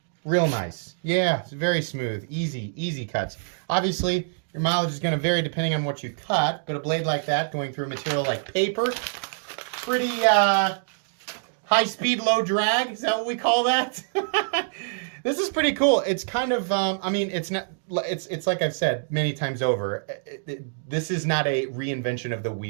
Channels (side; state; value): left; silent; digital silence